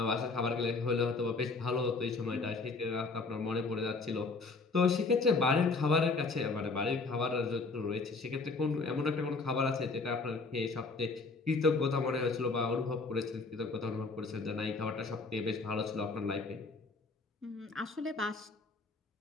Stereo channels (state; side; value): quieter; right; 4.0 dB